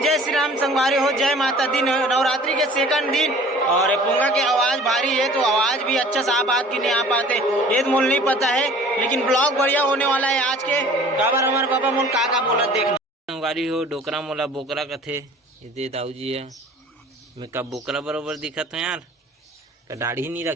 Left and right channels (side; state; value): both; normal; correlation 0.48